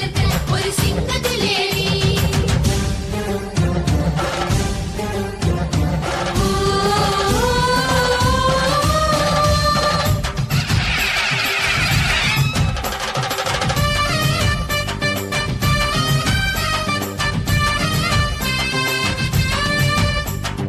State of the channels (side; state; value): both; identical; correlation 1.00